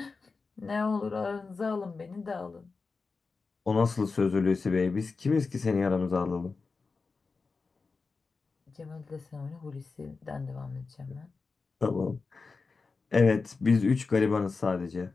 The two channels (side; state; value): right; quieter; 4.3 dB